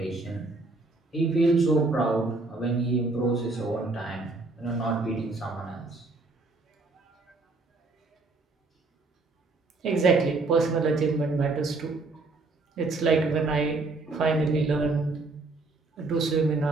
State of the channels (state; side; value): quieter; left; 3.4 dB